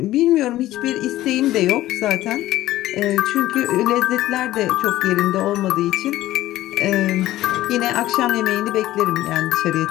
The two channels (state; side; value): quieter; right; 15.1 dB